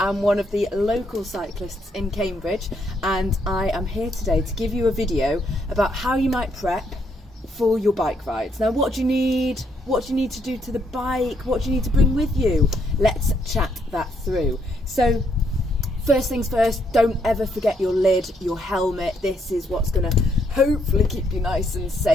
one of the local cyclists in Cambridge, and I am here today to give you a video about how you might prep for your bike rides. Now, what do you need? What do you need to do to the bike? What do you need to bring with you? Let's chat that through. So, first things first, don't ever forget your lid, your helmet. This is what's going to hopefully keep you nice and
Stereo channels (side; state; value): both; normal; correlation 0.73